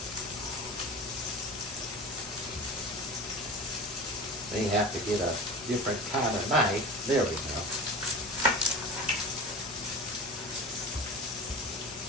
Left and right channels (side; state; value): both; normal; correlation 0.34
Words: May have to get a different kind of knife. There we go.